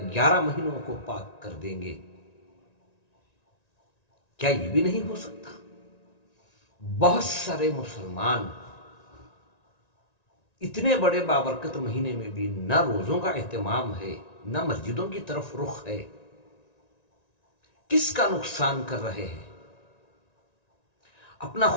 مہینوں کو پاک کر دیں گے۔ کیا یہ بھی نہیں ہو سکتا؟ بہت سارے مسلمان اتنے بڑے بابرکت مہینے میں بھی نہ روزوں کا اہتمام ہے، نہ مسجدوں کی طرف رخ ہے۔ کس کا نقصان کر رہے ہیں؟ اپنا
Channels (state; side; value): late; right; 1.9 ms